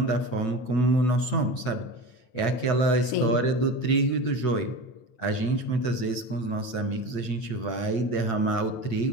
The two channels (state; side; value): late; right; 8.9 ms